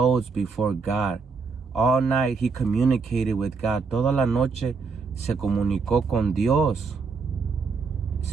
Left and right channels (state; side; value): quieter; left; 4.8 dB